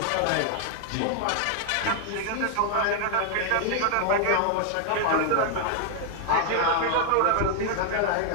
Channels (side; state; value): both; different; correlation 0.00